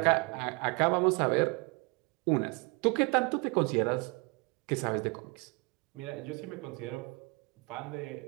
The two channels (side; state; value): left; quieter; 29.8 dB